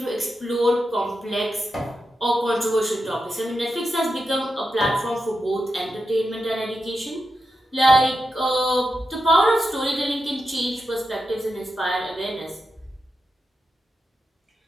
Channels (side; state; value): both; normal; correlation 0.88